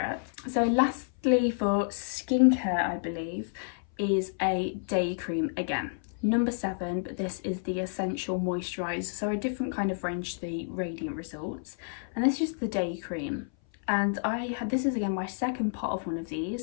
So lastly for skincare, I believe, is a day cream again. Number 7, but this is the Essential Moisturiser, so a different kind of range to the Radiant Results. And this is the day cream. And this is again my second pot of one of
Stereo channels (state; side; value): silent; right; 57 dB below the other